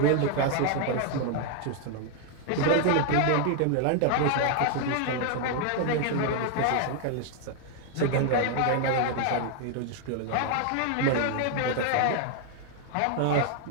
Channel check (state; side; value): different; both; correlation 0.00